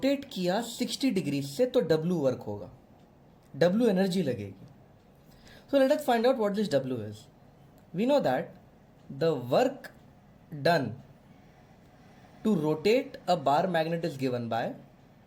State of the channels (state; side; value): identical; both; correlation 1.00